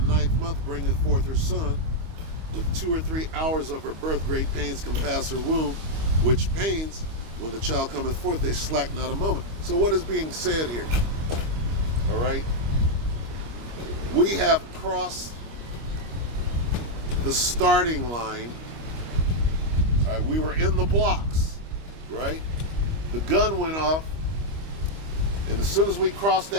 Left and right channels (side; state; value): left; late; 25 ms